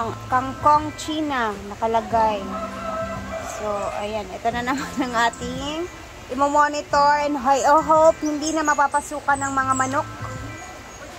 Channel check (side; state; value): both; identical; correlation 1.00